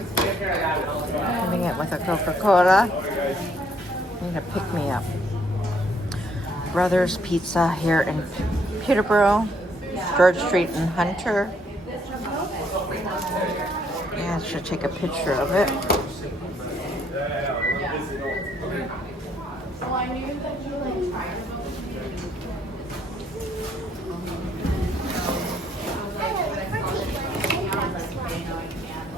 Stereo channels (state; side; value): normal; both; correlation 0.68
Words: it with a Coca-Cola. Need to pick me up. Brothers Pizza here in Peterborough, George Street in Hunter. Yeah, I should take a picture of it. So I knew that you like tried to